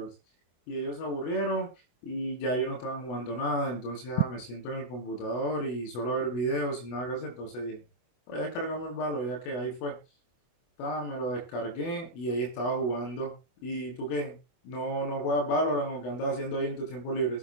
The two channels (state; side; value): late; right; 24 ms